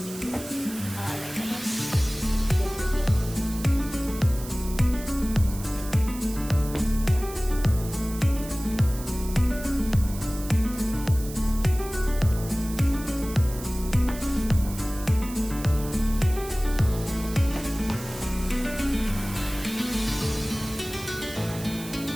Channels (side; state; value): right; noise; hiss, 13 dB below the sound